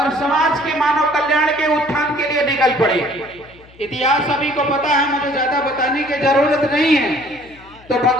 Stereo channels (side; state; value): left; noise; hum, 25 dB below the sound